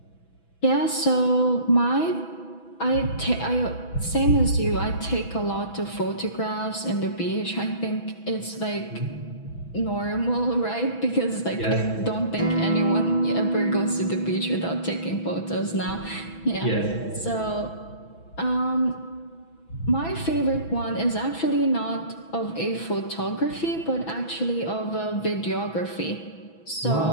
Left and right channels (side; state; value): right; late; 6.1 ms